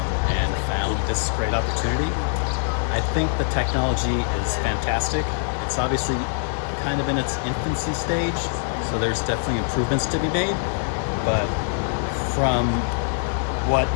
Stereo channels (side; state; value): right; silent; 63 dB below the other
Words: and found this great opportunity. I think the technology is fantastic. It's obviously kind of in its infancy stage, so there's definitely improvements to be made, but from what